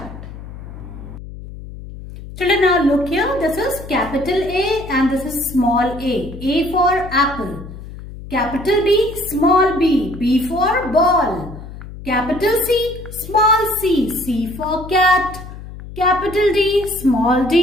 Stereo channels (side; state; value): left; noise; hum, 13 dB below the sound